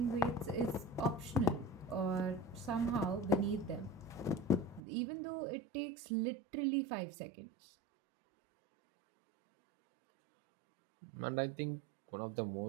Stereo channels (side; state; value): left; drops out; at 4.8 s